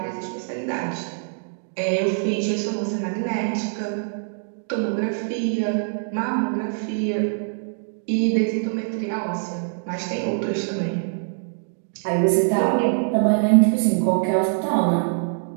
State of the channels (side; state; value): left; silent; digital silence